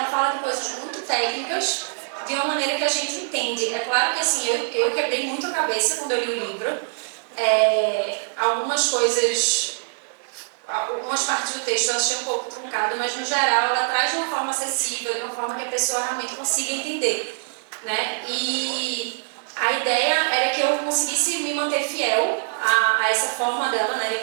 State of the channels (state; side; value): silent; left; 63 dB below the other